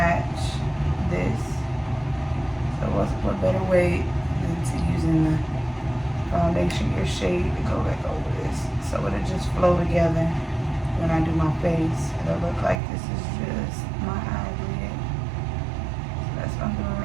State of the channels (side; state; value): left; drops out; at 12.8 s